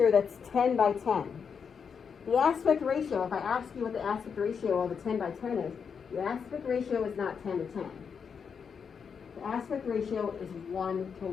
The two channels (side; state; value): right; quieter; 6.4 dB